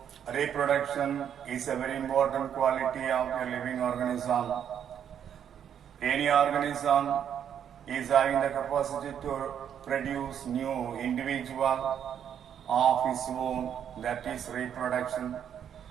reproduction is a very important quality of a living organism. Any organism is having the capacity to produce new individual of its own, that is reproduction.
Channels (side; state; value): left; quieter; 8.9 dB